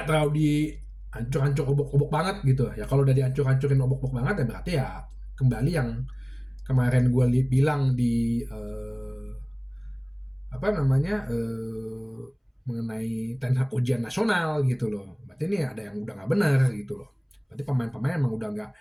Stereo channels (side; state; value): both; identical; correlation 1.00